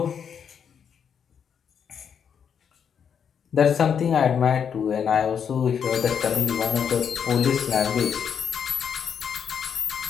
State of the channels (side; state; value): right; quieter; 7.5 dB